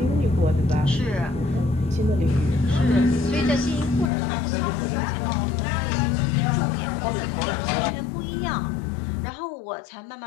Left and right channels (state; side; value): drops out; right; at 4.1 s